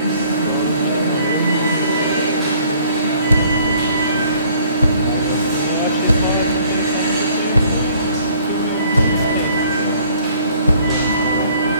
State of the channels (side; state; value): both; inverted; correlation -0.58